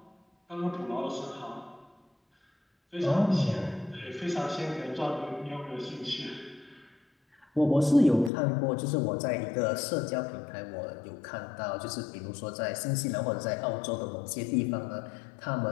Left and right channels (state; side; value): drops out; right; at 8.3 s